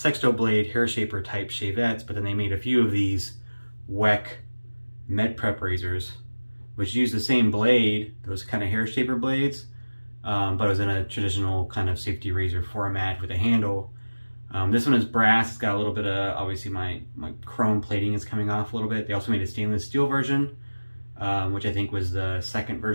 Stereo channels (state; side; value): inverted; both; correlation -1.00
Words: blade hair shaper type shavettes, but then they made a few of these Weck Med Prep razors, which use the same blade, those kind of hair shaper blades, but it was in a traditional kind of safety razor format with a handle. This one is brass. It's got a little bit of, obviously my chrome plating is coming off a little bit. They also made a stainless steel version, which I think was the second